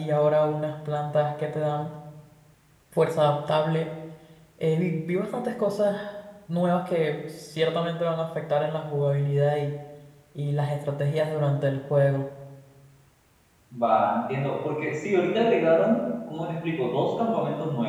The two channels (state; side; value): identical; both; correlation 1.00